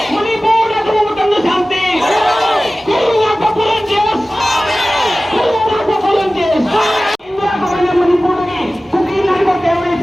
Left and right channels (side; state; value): both; normal; correlation 0.97